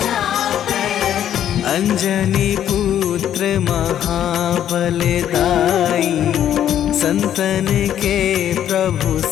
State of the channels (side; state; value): right; quieter; 10.5 dB